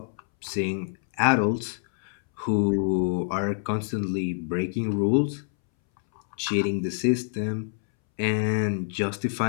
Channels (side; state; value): right; silent; 61 dB below the other